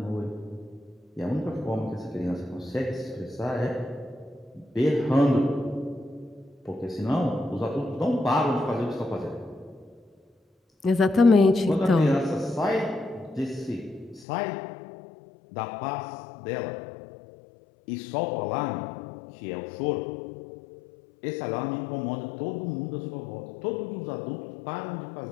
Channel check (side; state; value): right; drops out; at 14.2 s